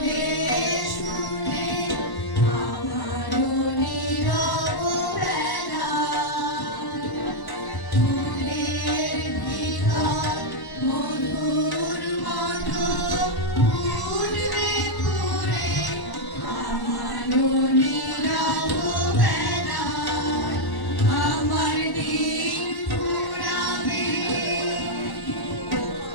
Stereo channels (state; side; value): late; right; 1.1 ms